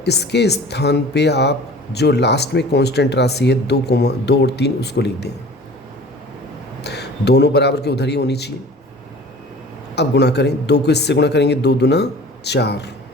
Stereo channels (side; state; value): both; normal; correlation 0.43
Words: इसके स्थान पे आप जो लास्ट में कांस्टेंट राशि है 2 और 3 उसको लिख दें। दोनों बराबर के उधर ही होनी चाहिए। अब गुणा करें, 2 को इससे गुणा करेंगे, 2 दूना 4,